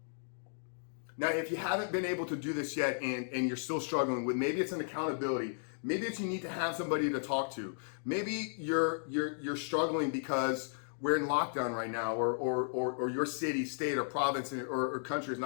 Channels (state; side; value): silent; right; digital silence